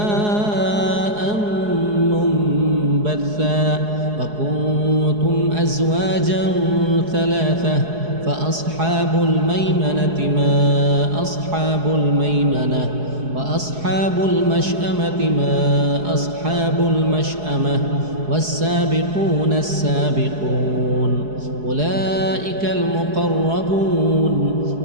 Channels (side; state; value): left; late; 4.8 ms